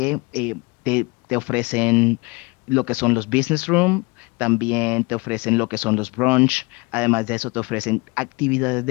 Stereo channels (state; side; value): quieter; right; 26.6 dB